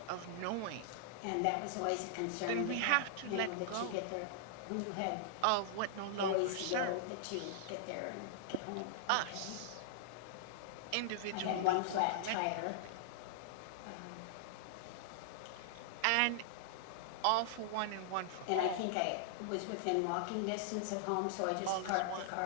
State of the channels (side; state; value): both; different; correlation -0.01